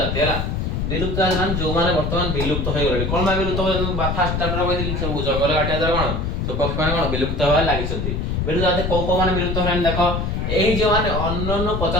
हला विलुप्त जाति जो माने वर्तमान विलुप्त होय गले कोन मा विलुप्त होय फास्ट चैप्टर कहली सब जंगल काटिया दर कोन सब पक्षी माने कोन विलुप्त होय लागि छथि विलुप्त जाति को माने विलुप्त होय देखो एही जो माने अन्नन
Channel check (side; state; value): left; noise; rumble, 1 dB below the sound